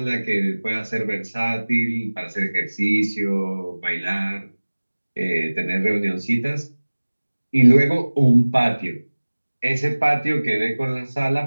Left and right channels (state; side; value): inverted; both; correlation -1.00